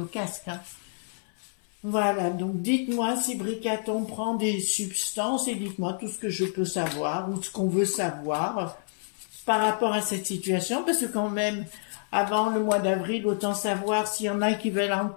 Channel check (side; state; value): right; silent; 59 dB below the other